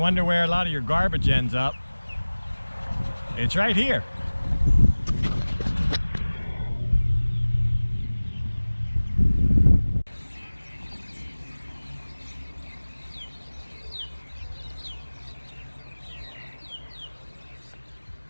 where a lot of your garbage ends up, it's right here.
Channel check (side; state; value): both; inverted; correlation -1.00